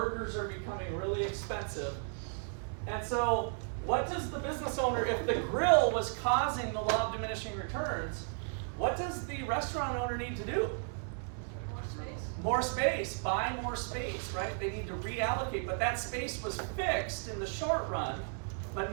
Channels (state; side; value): silent; left; 55 dB below the other